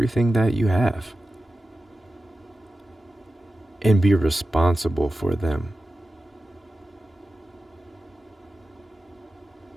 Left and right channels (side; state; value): both; normal; correlation 0.93